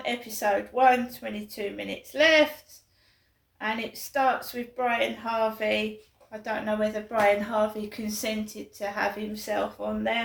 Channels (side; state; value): both; identical; correlation 1.00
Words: Episode 1, 22 minutes left. And it starts with Brian Harvey. I don't know whether Brian Harvey consented to have himself on